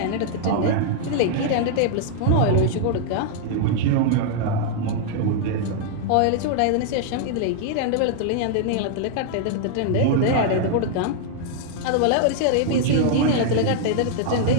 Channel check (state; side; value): different; both; correlation -0.01